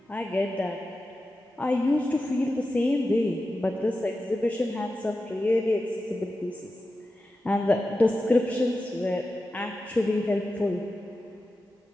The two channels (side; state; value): both; normal; correlation 0.92